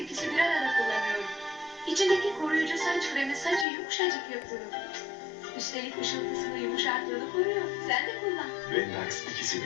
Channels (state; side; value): drops out; right; at 3.7 s